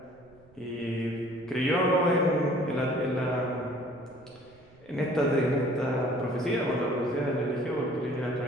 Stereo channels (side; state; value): right; noise; rumble, 27 dB below the sound